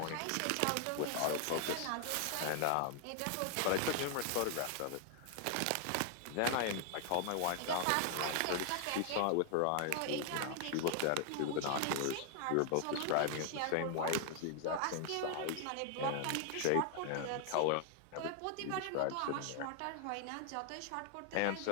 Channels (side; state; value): both; different; correlation 0.00